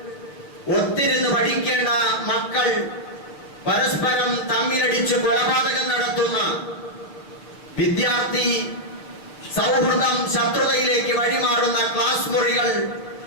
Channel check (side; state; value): right; late; 6.8 ms